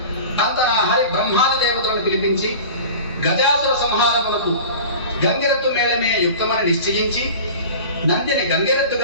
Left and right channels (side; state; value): both; inverted; correlation -0.37